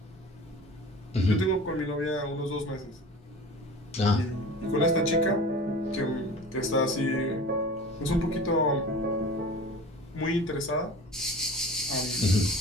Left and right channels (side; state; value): both; normal; correlation 0.39